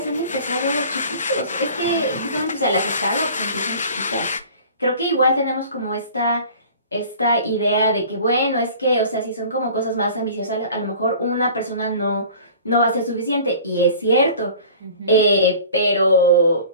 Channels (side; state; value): both; inverted; correlation -0.44